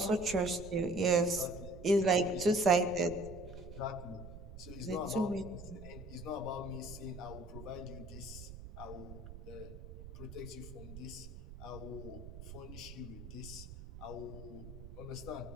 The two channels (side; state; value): right; noise; rumble, 13 dB below the sound